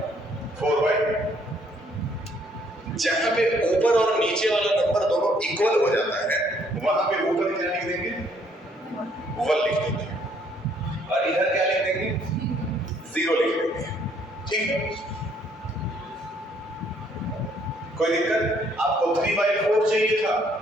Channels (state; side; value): normal; both; correlation 0.66